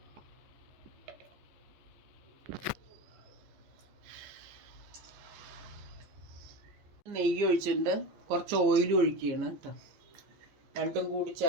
നെയ്യ് ഒഴിച്ചിട്ടുണ്ട്. കുറച്ച് ഓയിൽ ഒഴിക്കുകയാണ് കേട്ടോ. രണ്ടും കൂടി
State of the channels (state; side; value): late; left; 14 ms